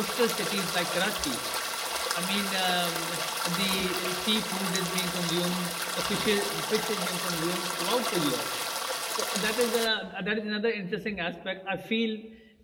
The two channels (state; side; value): identical; both; correlation 1.00